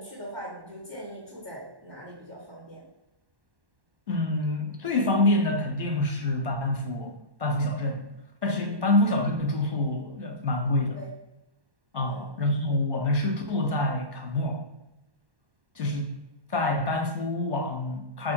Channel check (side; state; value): left; late; 1.1 ms